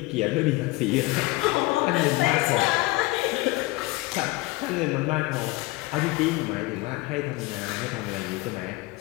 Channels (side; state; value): right; quieter; 21.7 dB